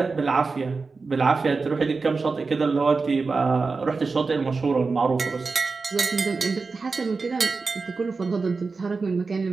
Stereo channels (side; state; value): left; quieter; 4.3 dB